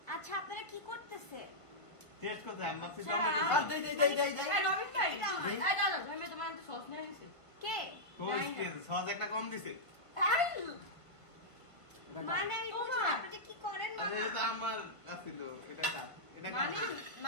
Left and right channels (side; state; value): right; late; 1.5 ms